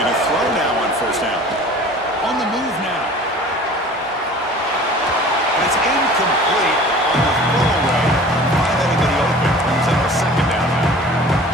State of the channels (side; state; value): both; normal; correlation 0.44